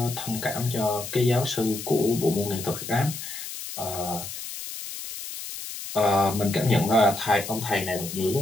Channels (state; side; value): noise; left; hiss, 9 dB below the sound